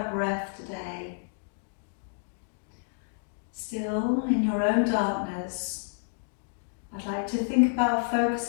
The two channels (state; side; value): silent; right; digital silence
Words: breath today, still in your own darkness, I'd like to think about